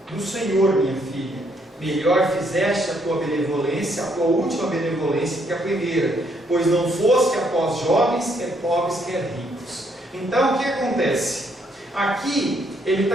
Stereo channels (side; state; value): both; normal; correlation 0.71